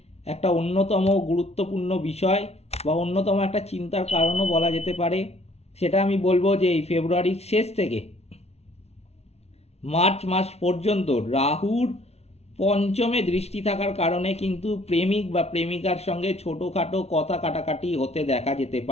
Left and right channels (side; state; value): right; late; 0.31 ms